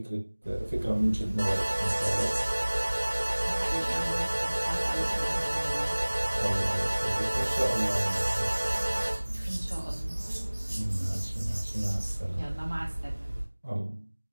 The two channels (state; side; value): inverted; both; correlation -1.00